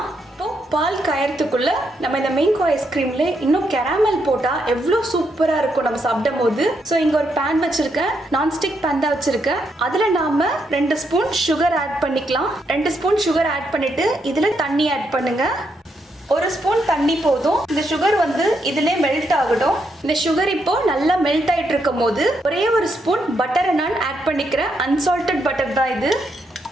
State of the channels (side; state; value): both; normal; correlation 0.79